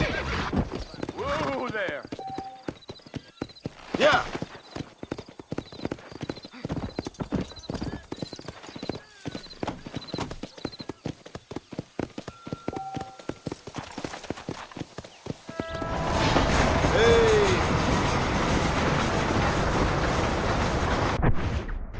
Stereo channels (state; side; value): identical; both; correlation 1.00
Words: Whoa there. Yeah.